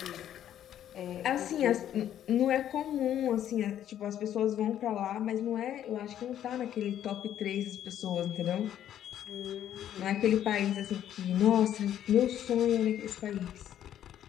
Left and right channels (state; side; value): quieter; right; 10.9 dB